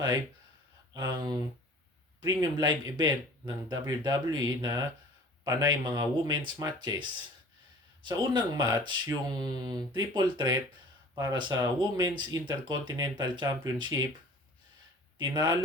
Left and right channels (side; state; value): both; normal; correlation 0.46